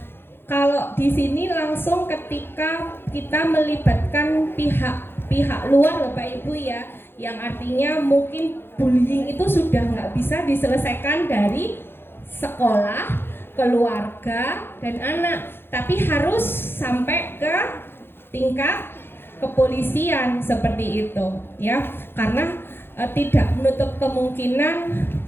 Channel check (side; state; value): right; late; 0.11 ms